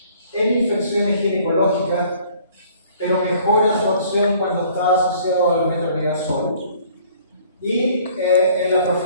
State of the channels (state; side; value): inverted; both; correlation -0.56